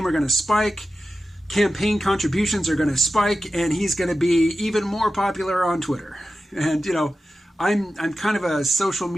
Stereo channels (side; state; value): both; normal; correlation 0.93